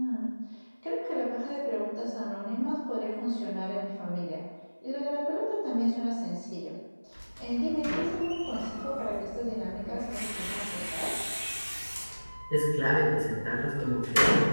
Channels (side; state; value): both; inverted; correlation -1.00